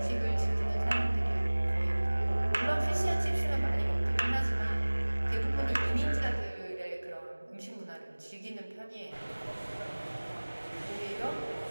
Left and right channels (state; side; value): inverted; both; correlation -1.00